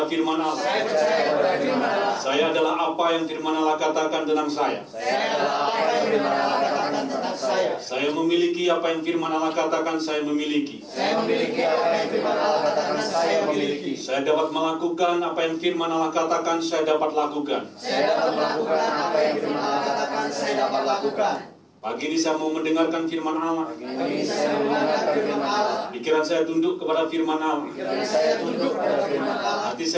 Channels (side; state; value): both; identical; correlation 1.00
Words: firman Allah. Saya adalah apa yang firman Allah katakan tentang saya. Saya memiliki apa yang firman Allah katakan saya memiliki. Saya dapat melakukan apa yang firman Allah katakan saya dapat lakukan. Pagi ini saya mau mendengarkan firman Allah. Pagi ini saya mendengarkan firman Allah. Pikiran saya tunduk kepada firman Allah. Pikiran saya tunduk kepada firman Allah. Hati